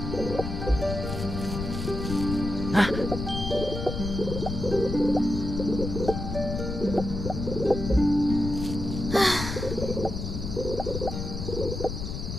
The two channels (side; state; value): left; noise; rumble, 5 dB below the sound